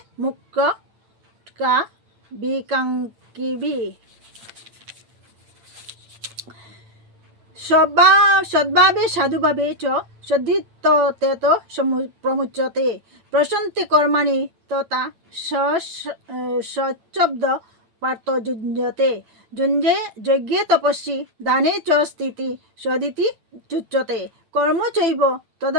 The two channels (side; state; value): left; late; 8.9 ms